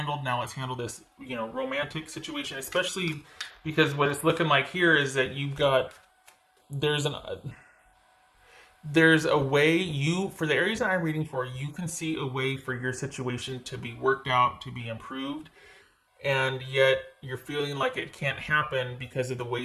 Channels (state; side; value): identical; both; correlation 1.00